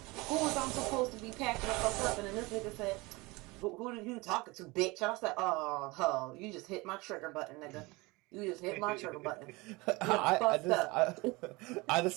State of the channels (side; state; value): left; quieter; 23.7 dB